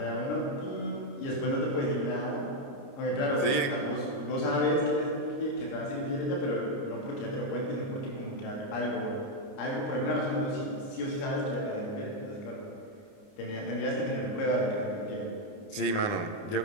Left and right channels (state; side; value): late; right; 29 ms